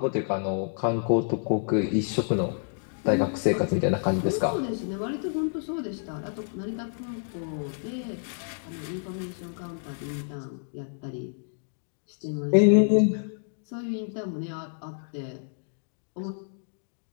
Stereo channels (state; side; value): silent; right; digital silence